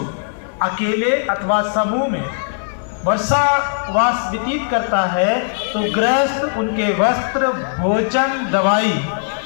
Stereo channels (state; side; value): silent; right; digital silence